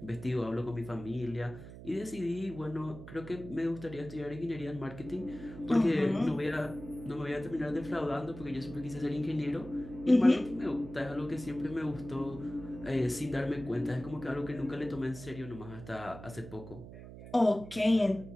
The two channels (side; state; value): right; noise; hum, 14 dB below the sound